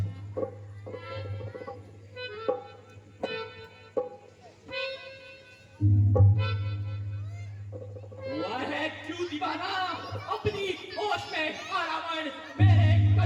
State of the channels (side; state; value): both; identical; correlation 1.00